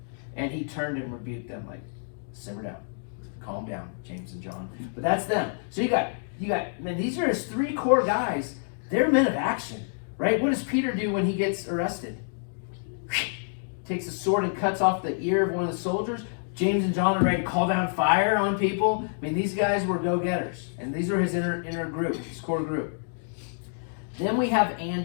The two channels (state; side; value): silent; right; digital silence